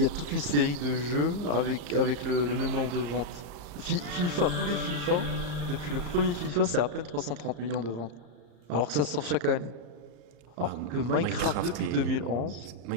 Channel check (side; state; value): left; late; 34 ms